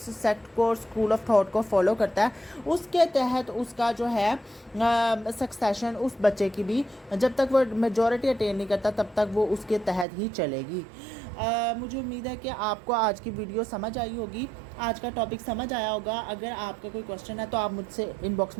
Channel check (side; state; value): left; drops out; at 10.1 s